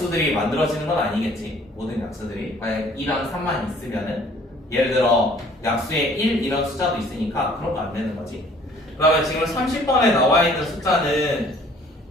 만들어지는 건 아니겠지. 모든 약수들이 만약 2랑 3만 있으면은 예를 들어 약수에 1 이런 숫자도 있으니까 그런 거 안 되는 거지. 그러면 지금 30번에 나와 있는 숫자는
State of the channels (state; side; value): normal; both; correlation 0.55